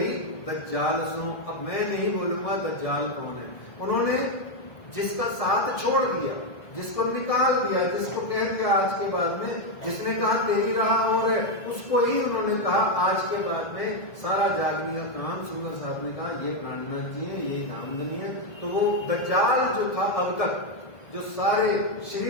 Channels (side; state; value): right; late; 1.7 ms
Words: दज्जाल सो। अब मैं नहीं बोलूंगा दज्जाल कौन है। उन्होंने जिसका साथ छोड़ दिया, जिसको निकाल दिया, जिसको कह दिया आज के बाद में, जिसने कहा तेरी राह और है, उसको ही उन्होंने कहा आज के बाद में सारा जागने का काम। सुंदर साहब ने कहा ये प्राणनाथ जी है, ये नामधनी है। तो वो दज्जाल जो था अब तक, जो सारे